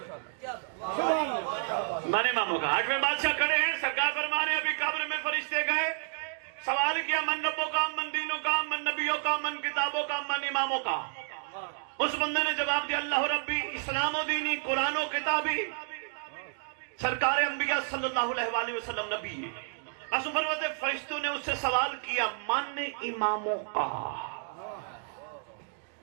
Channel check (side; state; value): left; silent; digital silence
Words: من اماموں کا 8ویں بادشاہ کھڑے ہیں، سرکار فرمانے ابھی قبر میں فرشتے گئے، سوال کیا من ربوں کا، من دینوں کا، من نبیوں کا، من کتابوں کا، من اماموں کا. اس بندے نے جواب دیا اللہ ربی اسلام و دینی قرآن و کتابی سرکار انبیاء صلی اللہ علیہ وآلہ وسلم نبی. فرشتوں نے اس سے سوال کیا من اماموں کا.